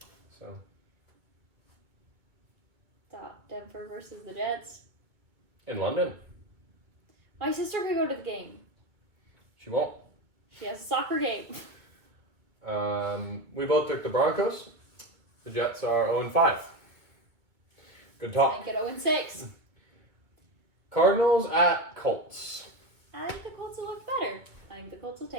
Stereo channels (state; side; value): late; left; 2.2 ms